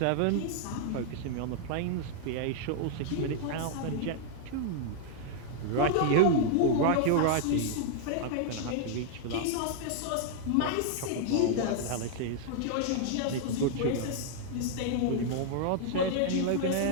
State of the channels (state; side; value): different; both; correlation -0.01